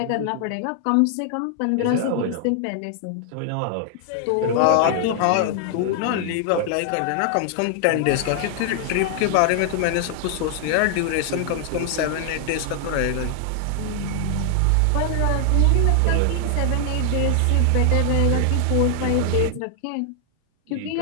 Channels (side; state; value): both; different; correlation 0.00